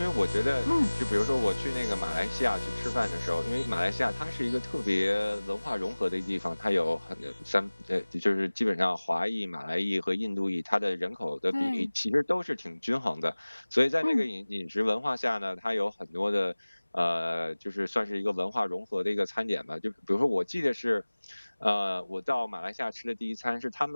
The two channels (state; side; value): inverted; both; correlation -1.00